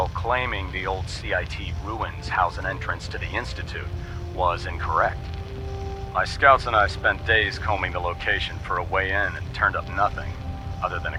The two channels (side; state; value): both; identical; correlation 1.00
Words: claiming the old CIT ruins house an entrance to the Institute was incorrect. My scouts and I spent days combing the location for a way in and turned up nothing, other than a